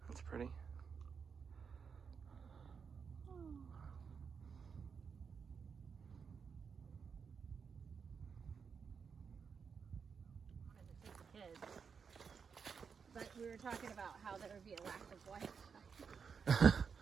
That's pretty. Kids. But we were talking about how there would be a lack of Wi-Fi.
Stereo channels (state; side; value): quieter; left; 6.1 dB